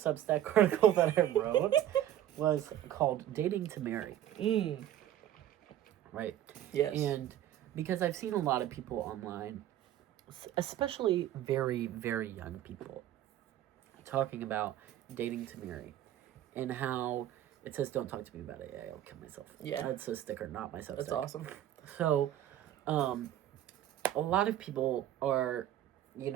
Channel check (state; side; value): quieter; left; 12.1 dB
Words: article that I wrote was called "Dating to Marry." Right. Yes. And because I've seen a lot of people online, especially very, very young people, talking about dating to marry, and how it says, "Don't talk to me about it. Yeah, I'll kill myself." Yeah. That's a sticker, not my Substack. That's awesome. So, a lot of people are,